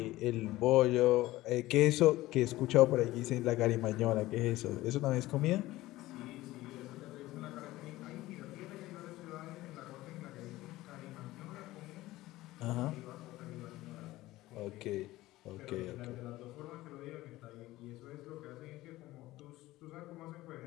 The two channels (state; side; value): quieter; right; 17.3 dB